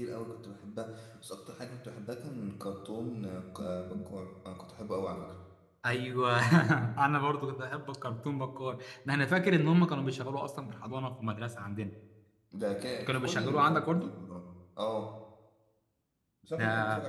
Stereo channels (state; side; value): identical; both; correlation 1.00